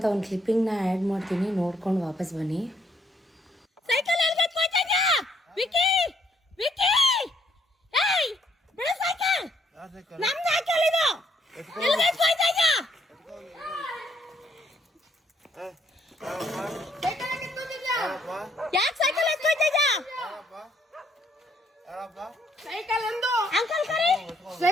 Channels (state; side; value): normal; both; correlation 0.69